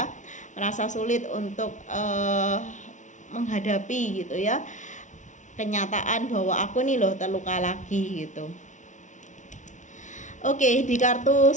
merasa sulit untuk menghadapi gitu ya kenyataan bahwa aku nih loh terluka lagi gitu. Oke, di kartu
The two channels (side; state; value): right; late; 0.36 ms